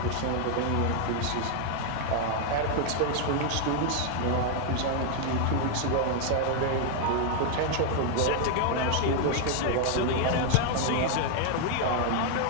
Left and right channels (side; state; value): both; different; correlation 0.00